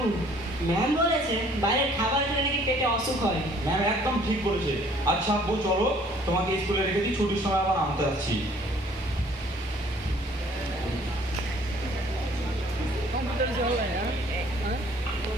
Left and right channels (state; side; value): normal; both; correlation 0.57